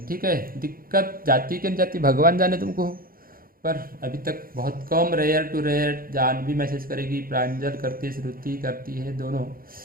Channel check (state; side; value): late; left; 0.42 ms